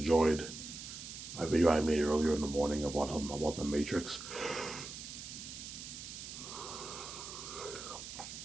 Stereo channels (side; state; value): right; noise; hiss, 10 dB below the sound